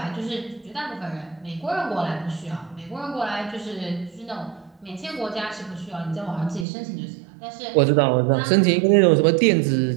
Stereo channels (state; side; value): drops out; left; at 6.7 s